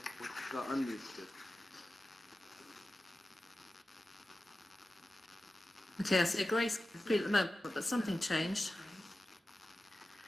got unmuted. Okay, I see a grey screen at the moment, but something changed.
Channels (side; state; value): both; normal; correlation 0.94